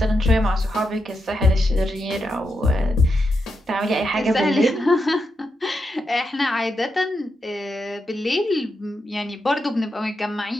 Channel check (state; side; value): normal; both; correlation 0.85